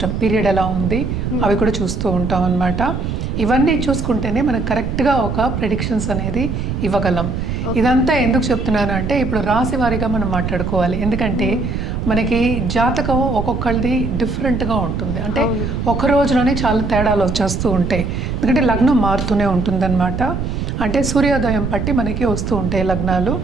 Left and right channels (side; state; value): right; noise; rumble, 3 dB below the sound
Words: పీరియడ్ ఎలా ఉంది అవి కూడా చూస్తూ ఉంటాం అన్నమాట. ఇవన్నీ చూసుకుంటేనే మనకు కరెక్ట్గా ఒక ప్రెడిక్షన్స్ అనేది ఇవ్వగలం. ఇదంతా ఎందుకు చెప్తున్నాను అంటే ఇప్పుడు రాశి వారీగా మనం మాట్లాడుకోవాలి. ఎందుకంటే మనకి జాతకం ఒక్కొక్కరిది డిఫరెంట్గా ఉంటుంది, అంటే ఒక రోజులోనే చాలా తేడాలు వచ్చేస్తూ ఉంటాయి. ఎందుకంటే లగ్నం మారుతూనే ఉంటుందన్నమాట. అంటే సూర్యోదయం బట్టి మనకి వస్తూ ఉంటాయి లగ్నాలు.